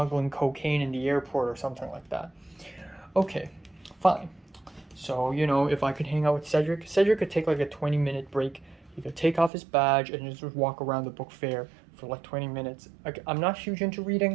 cocaine in the airport or something like that. Okay, fine. So, you know, if I could hang out with Cedric could take like a 20-minute break. He could take off his badge and just walk around the book fair for like 20 minutes. I'm not huge into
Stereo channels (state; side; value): drops out; left; at 9.5 s